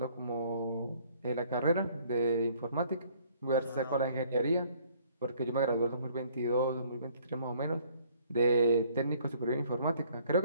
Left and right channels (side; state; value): both; inverted; correlation -0.60